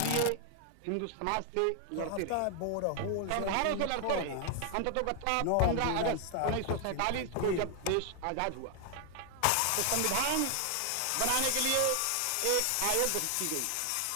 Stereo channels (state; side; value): different; both; correlation 0.00